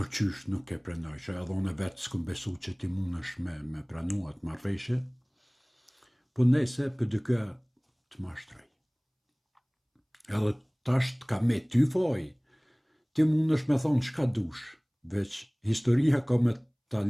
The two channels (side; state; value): both; identical; correlation 1.00